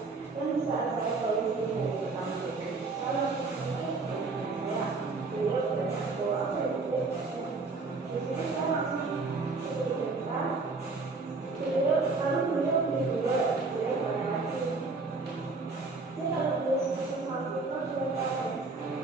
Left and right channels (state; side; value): quieter; left; 3.8 dB